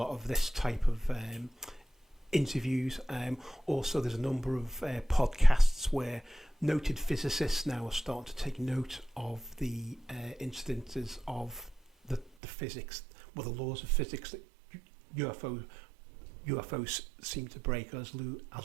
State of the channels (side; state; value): left; drops out; at 12.3 s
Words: of this type of interviews. Also, there's a number of podcasts where noted physicists now are starting to take note of the incidences of the physics, the laws of physics that UFOs seem to break. As Lou